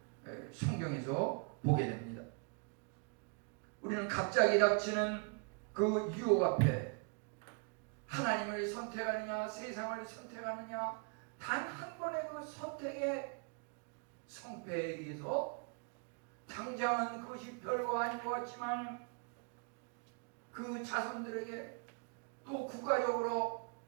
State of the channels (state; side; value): quieter; left; 37.2 dB